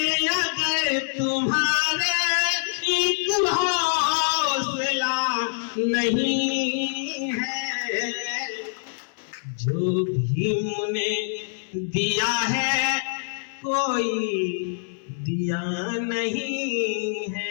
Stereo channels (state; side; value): silent; right; 62 dB below the other